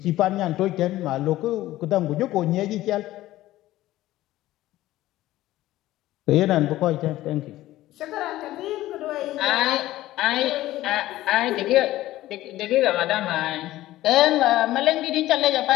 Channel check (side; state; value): right; quieter; 15.7 dB